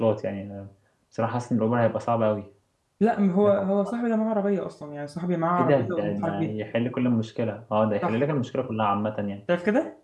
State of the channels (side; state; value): both; identical; correlation 1.00